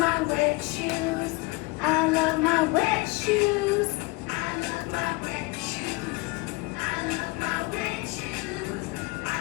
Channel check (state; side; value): quieter; right; 25.0 dB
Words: wet shoes. I love my wet shoes. I love my wet shoes. I love my wet shoes.